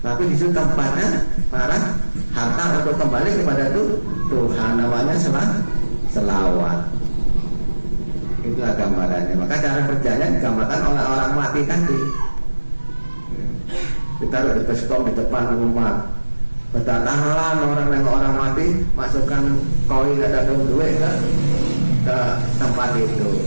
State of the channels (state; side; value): inverted; both; correlation -1.00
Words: tapi disitu tempatnya para harta untuk kembali kepada Tuhan, namanya selawat. Itulah gambarannya. Maka cara kerjanya digambarkan oleh orang mati tadi. Ditaruh di baskom di depan rumah. Berdatangan orang mati, masukkan koin atau duit ke tempat itu.